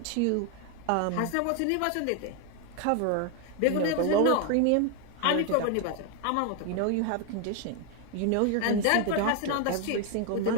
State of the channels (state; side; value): different; both; correlation 0.01